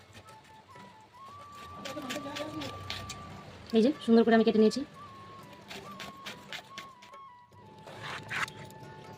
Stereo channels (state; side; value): identical; both; correlation 1.00